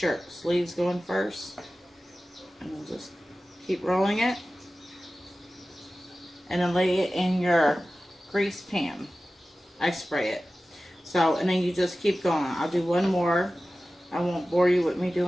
Sleeves going first. And then just keep rolling it. And then lay it in your grease pan. I spray it. So, and then you just keep going. I'll do one more. I won't bore you with me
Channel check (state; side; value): normal; both; correlation 0.95